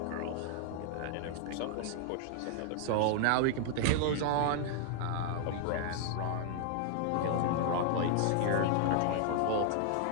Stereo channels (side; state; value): both; different; correlation 0.00